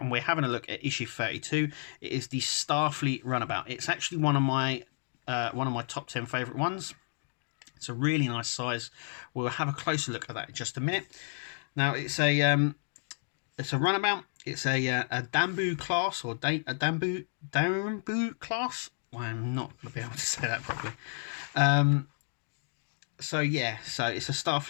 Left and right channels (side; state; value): right; silent; digital silence